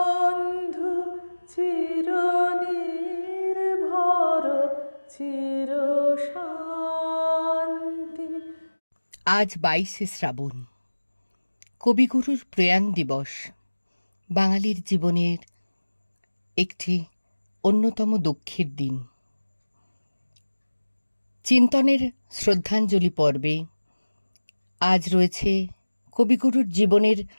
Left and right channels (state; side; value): inverted; both; correlation -1.00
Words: চিরনির্ভর চিরশান্তি। আজ 22শে শ্রাবণ, কবিগুরুর প্রয়াণ দিবস। বাঙালির জীবনের একটি অন্যতম দুঃখের দিন। চিন্তনের শ্রদ্ধাঞ্জলি পর্বে আজ রয়েছে কবিগুরুর জীবনের